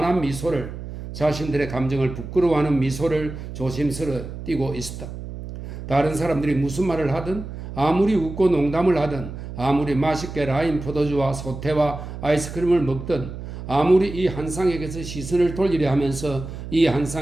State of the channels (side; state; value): right; noise; hum, 10 dB below the sound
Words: 미소를, 자신들의 감정을 부끄러워하는 미소를 조심스레 띠고 있었다. 다른 사람들이 무슨 말을 하든, 아무리 웃고 농담을 하든, 아무리 맛있게 라임 포도주와 소태와 아이스크림을 먹든, 아무리 이 한상에게서 시선을 돌리려 하면서 이